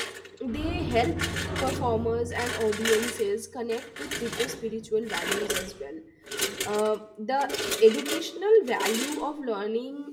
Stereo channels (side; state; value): both; identical; correlation 1.00